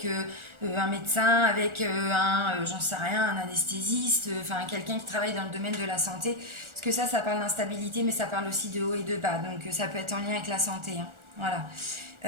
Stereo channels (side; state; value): left; late; 1.4 ms